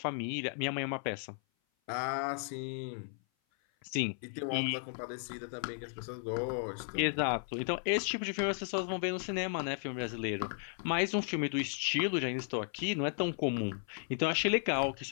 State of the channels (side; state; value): right; silent; 55 dB below the other